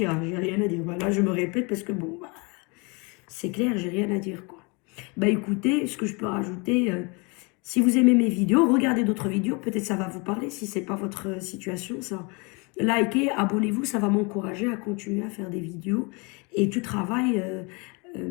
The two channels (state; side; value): quieter; right; 30.1 dB